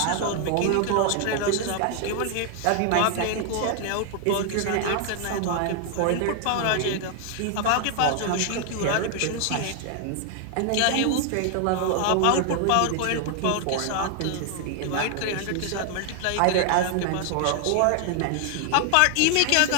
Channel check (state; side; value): different; both; correlation 0.00